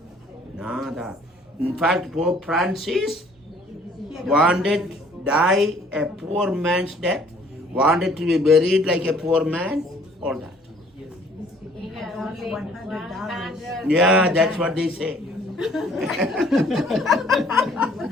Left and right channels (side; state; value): both; normal; correlation 0.58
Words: Nada. In fact, Pope Francis wanted die a poor man's death, wanted to be buried like a poor man, all that. He had only $100. Yeah, that's what they say.